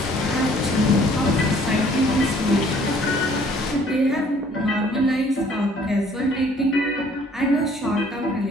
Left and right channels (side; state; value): both; normal; correlation 0.58